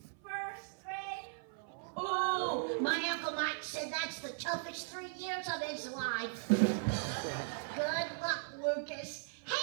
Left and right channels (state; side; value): silent; left; 52 dB below the other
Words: First grade. Oh, my Uncle Mike said that's the toughest 3 years of his life. Good luck, Lucas.